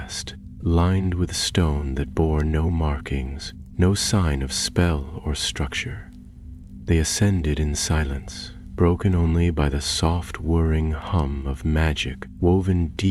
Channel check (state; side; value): identical; both; correlation 1.00